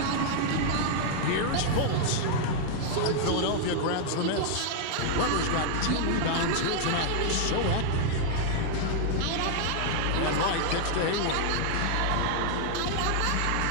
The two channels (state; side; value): different; both; correlation 0.00